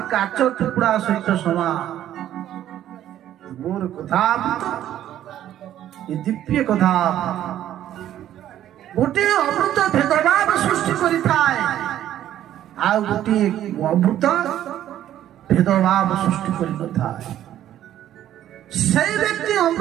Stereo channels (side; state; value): left; quieter; 11.9 dB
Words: काच टुकड़ा सहित समान मोर कथा ये दिव्य कथा गोटे अमृत भेदभाव सृष्टि करिथाय आ गोटे अमृत भेदभाव सृष्टि करिथाय से व्यक्ति